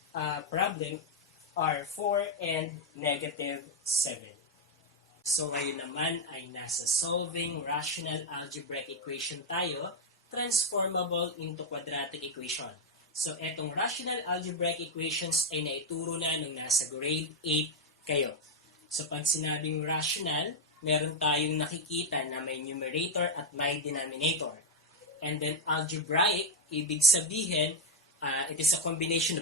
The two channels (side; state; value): both; normal; correlation 0.03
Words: problem are 4 and negative 7. So ngayon naman ay nasa solving rational algebraic equation tayo, transformable into quadratic equation. So etong rational algebraic equations ay naituro na nung nasa grade 8 kayo. So pag sinabing rational, meron tayong nakikita na may numerator at may denominator. And then algebraic, ibig sabihin, it is a combination